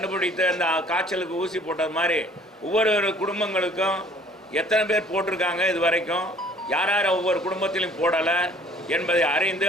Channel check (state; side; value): normal; both; correlation 0.55